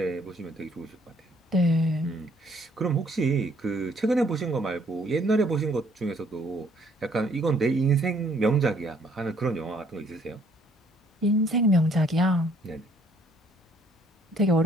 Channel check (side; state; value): both; normal; correlation 0.64